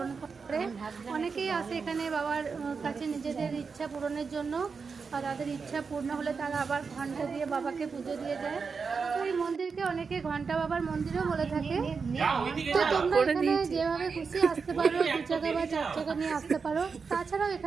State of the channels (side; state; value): left; quieter; 5.2 dB